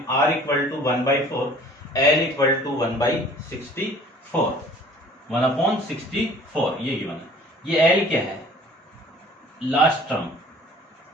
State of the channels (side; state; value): both; normal; correlation 0.50